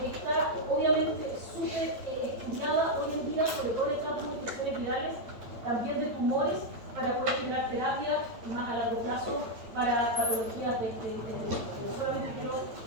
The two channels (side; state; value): left; late; 9.0 ms